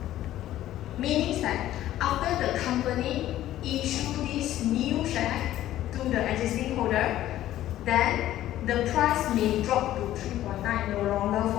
Meaning that after the company issue this new share to the existing holder, then the price may drop to 3.9, no longer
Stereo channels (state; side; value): quieter; right; 13.5 dB